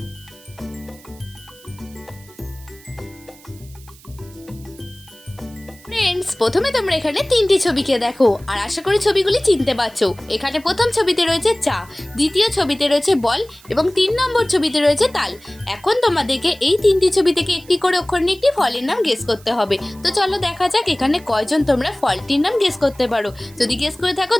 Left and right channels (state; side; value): noise; right; hiss, 24 dB below the sound